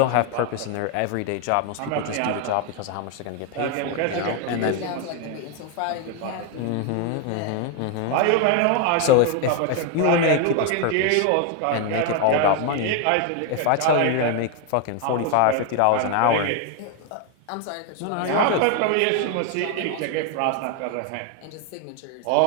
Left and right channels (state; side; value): different; both; correlation 0.01